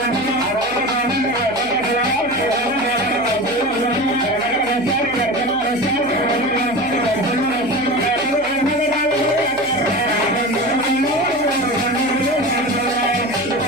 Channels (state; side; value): noise; left; hum, 23 dB below the sound